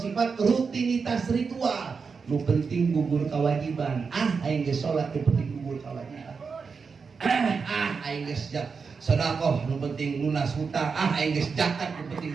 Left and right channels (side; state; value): left; quieter; 5.3 dB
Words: rutinitas ritual. Lu penting gugur kewajiban. Aing geus salat teu penting gugur kewajiban. Aing geus sedekah nu penting lunas hutang. Aing geus zakat nu